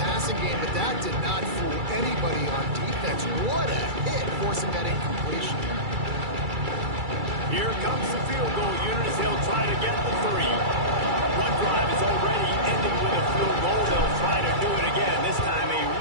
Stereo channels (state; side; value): late; left; 2.3 ms